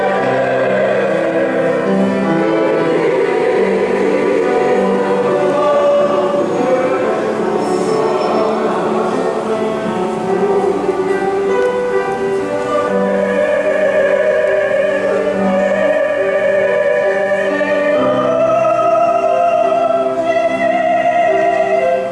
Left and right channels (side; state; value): both; identical; correlation 1.00